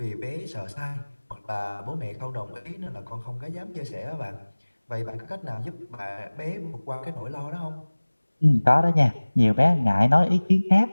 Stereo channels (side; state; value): both; inverted; correlation -1.00